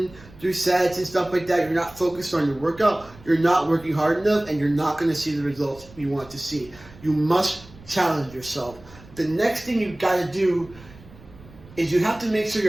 through sets and stuff like that, you're not focused on your workout, you're not working hard enough, and you're not going to see the results you want to see. You must challenge yourself. The next thing you've got to do is you have to make sure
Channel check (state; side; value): noise; right; rumble, 21 dB below the sound